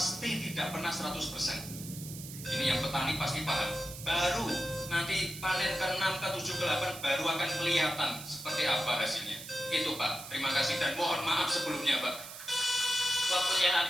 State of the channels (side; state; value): right; noise; hiss, 12 dB below the sound